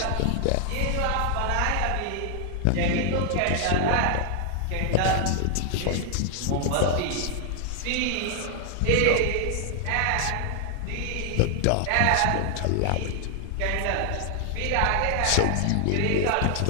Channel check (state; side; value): different; both; correlation 0.00